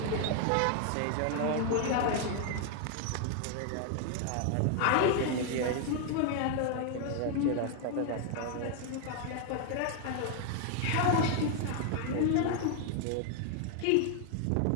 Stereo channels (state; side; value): different; both; correlation 0.00